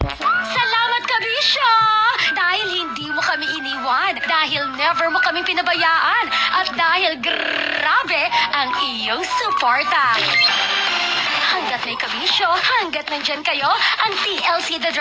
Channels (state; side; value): identical; both; correlation 1.00